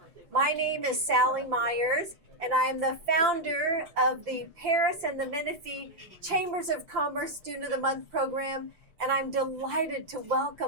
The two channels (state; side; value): late; left; 5.8 ms